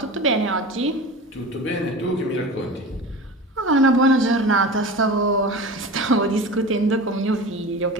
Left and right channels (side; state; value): both; normal; correlation 0.32